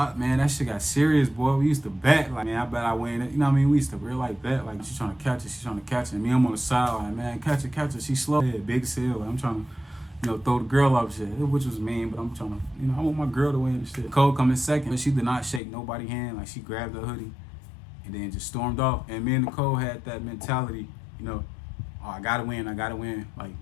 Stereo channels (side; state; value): right; drops out; at 15.6 s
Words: man. That shit got serious, boy. We used to bet, like, man, I bet I win it. You know what I mean? We used to real like bet, like, she's trying to catch it. And me, I'm on the sideline, man, catch it. She slow. Yeah, big sale. Like, I'm trying to, you know, throw the girl up shit, which was mean, but I'm trying to, you know, I want my girl to win and shit. Cole come in second, but she did not shake nobody's hand. Like, she grabbed her hoodie and then just stormed off. And me and Nicole had that mentality, you know, oh, I gotta win. Like,